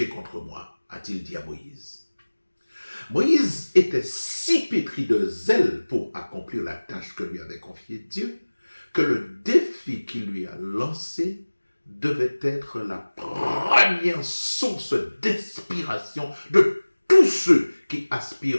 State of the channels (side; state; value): both; inverted; correlation -1.00